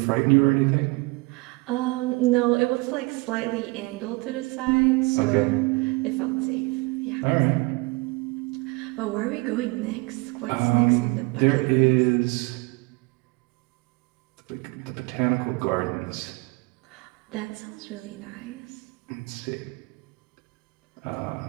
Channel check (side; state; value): left; quieter; 25.8 dB